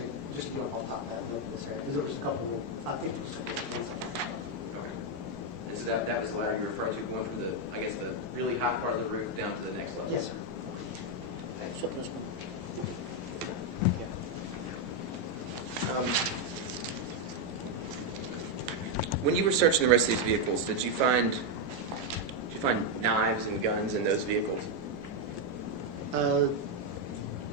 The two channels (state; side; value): normal; both; correlation 0.02